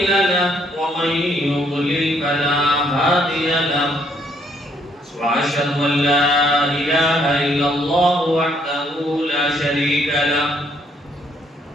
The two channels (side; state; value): both; normal; correlation 0.68